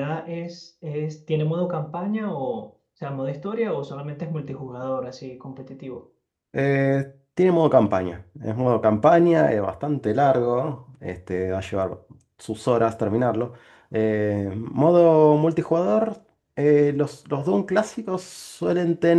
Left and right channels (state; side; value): identical; both; correlation 1.00